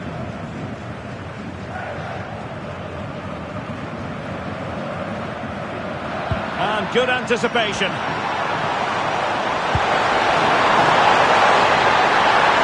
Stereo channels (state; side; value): identical; both; correlation 1.00